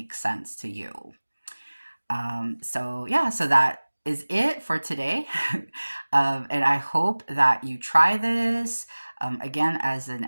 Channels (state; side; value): inverted; both; correlation -1.00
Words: sense to you. So that is it for today. And I hope that you try this, again, as an